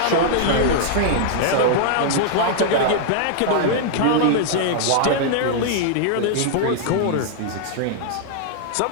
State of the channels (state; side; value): different; both; correlation -0.01